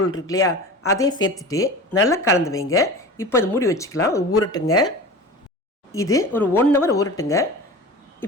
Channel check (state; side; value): normal; both; correlation 0.34